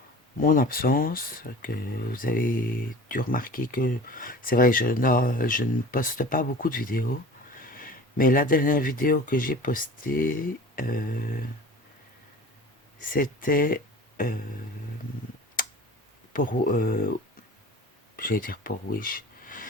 mon absence, que vous avez dû remarquer que c'est vrai, je ne poste pas beaucoup de vidéos, mais la dernière vidéo que j'ai postée, c'était euh, pour, j'allais dire pour Wish,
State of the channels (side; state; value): both; normal; correlation 0.40